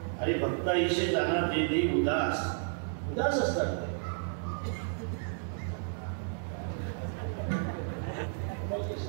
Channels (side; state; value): left; silent; digital silence